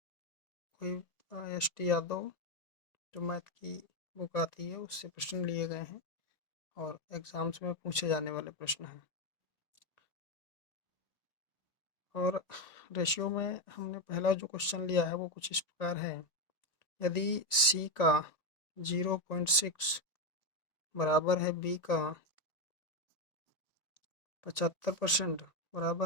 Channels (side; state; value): right; late; 1.9 ms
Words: कोई एस.टी. यादव जो मैथ की बुक आती है उससे प्रश्न लिए गए हैं और एग्ज़ाम्स में पूछे जाने वाले प्रश्न हैं। और रेशियो में हमने पहला जो क्वेश्चन लिया है वो कुछ इस प्रकार है। यदि C का 0.6 बराबर है B का 75%